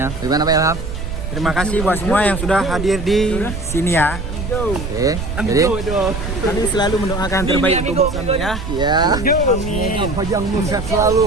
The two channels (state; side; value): noise; right; rumble, 6 dB below the sound